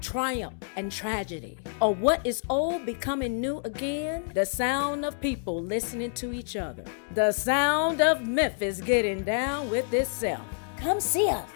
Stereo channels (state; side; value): silent; right; 59 dB below the other